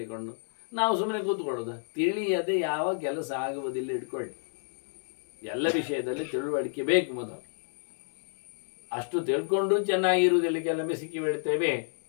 ನಾವು ಸುಮ್ಮನೆ ಕೂತ್ಕೊಳ್ಳೋದ? ತಿಳಿಯದೆ ಯಾವ ಕೆಲಸ ಆಗುವುದಿಲ್ಲ. ಇಟ್ಕೊಳ್ಳಿ, ಎಲ್ಲ ವಿಷಯದಲ್ಲಿ ತಿಳುವಳಿಕೆ ಬೇಕು ಮೊದಲು. ಅಷ್ಟು ತಿಳ್ಕೊಂಡು ಚೆನ್ನಾಗಿರುವುದಿಲ್ಲ, ಕೆಲವೊಮ್ಮೆ ಸಿಕ್ಕಿ ಬೀಳ್ತೇವೆ.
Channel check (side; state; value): right; silent; digital silence